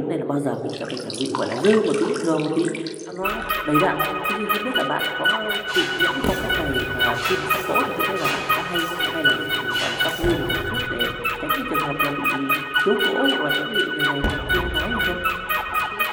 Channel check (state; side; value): identical; both; correlation 1.00